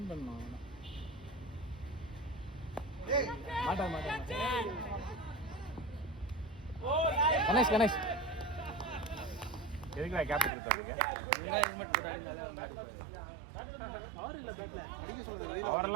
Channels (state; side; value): drops out; left; at 10.5 s